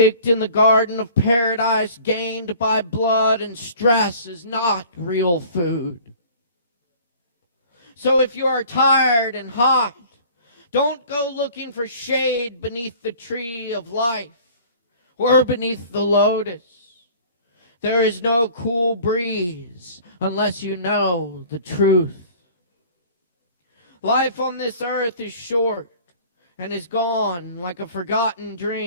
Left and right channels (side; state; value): both; inverted; correlation -0.48